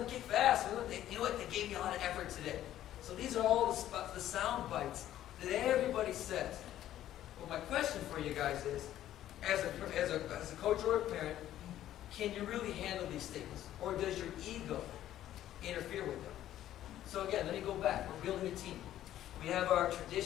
to get fast. You know what? They gave me a lot of effort today. So these are all the sound bites that everybody says. Well, my question for you guys is, as a coach or a parent, can you really handle these statements? Or does your ego interfere with them? So again, let me go back. We're building a team. We have our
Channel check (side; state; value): right; quieter; 12.5 dB